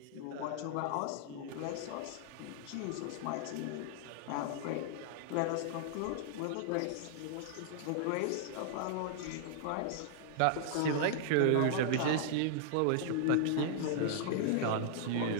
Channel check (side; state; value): both; different; correlation -0.01